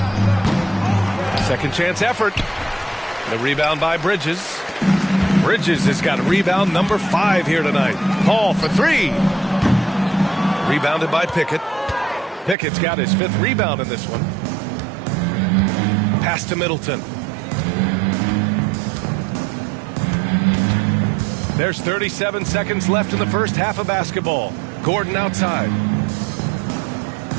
Second chance effort. The rebound by Bridges. Bridges has got rebound number 5 here tonight. Hall for 3. Rebounded by Pickett. Pickett's got his 5th rebound in this one. Pass to Middleton. There's 37 seconds left in the first half of basketball. Gordon outside.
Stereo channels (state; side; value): drops out; left; at 12.6 s